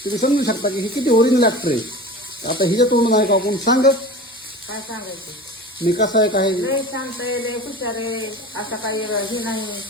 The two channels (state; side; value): normal; both; correlation 0.35